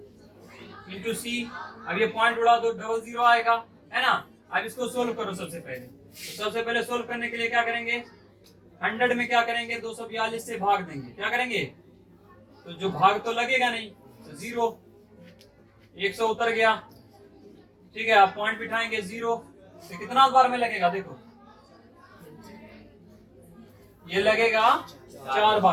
इंटू c। अब ये पॉइंट उड़ा दो, 00 आएगा है ना। अब इसको सोल्व करो। सबसे पहले सोल्व करने के लिए क्या करेंगे, 100 में क्या करेंगे 242 से भाग देंगे, क्या करेंगे, तो जो भाग तो लगेगा नहीं तो 0, 100 उतर गया। ठीक है, आप पॉइंट बिठाएंगे 0, तो कितना बार में लगेगा, देखो ये लगेगा 4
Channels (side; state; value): both; identical; correlation 1.00